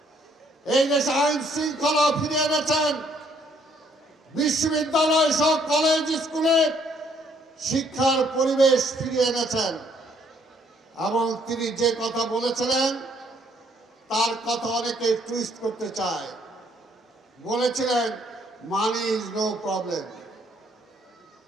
এই দেশে আইন শৃঙ্খলা ফিরিয়ে এনেছেন, বিশ্ববিদ্যালয় সহ কলেজ স্কুলে শিক্ষার পরিবেশ ফিরিয়ে এনেছেন। এবং তিনি যে কথা বলেছিলেন তার কথা অনেকে টুইস্ট করতে চায়। বলেছিলেন মানি ইজ নো প্রবলেম,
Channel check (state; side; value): normal; both; correlation 0.67